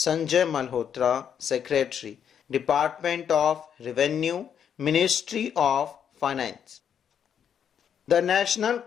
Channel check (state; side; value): quieter; right; 8.3 dB